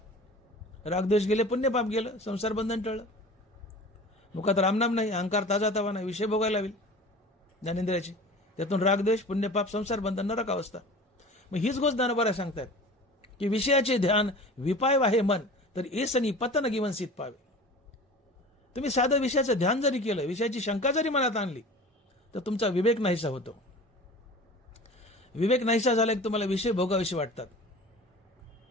रागद्वेष गेले, पुण्यपाप गेलं, संसार बंधन टळलं. मुखात रामनाम नाही, अहंकार ताजा तवा नाही, विषय भोगायला होईल ज्ञानेंद्रियाचे, त्यातून रागद्वेष, पुण्यपाप, संसार बंधन, नरक अवस्था. मग हीच गोष्ट ज्ञानोबा सांगतात की विषयाचे ध्यान विपाय वाहे मन, तर एसनी पतन गिवनसित पावे. तुम्ही साधं विषयाचं ध्यान जरी केलं, विषयाची शंका जरी मनात आणली, तर तुमचा विवेक नाहीसा होतो. विवेक नाहीसा झाला की तुम्हाला विषय भोगाविषयी वाटतात.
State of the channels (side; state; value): both; normal; correlation 0.39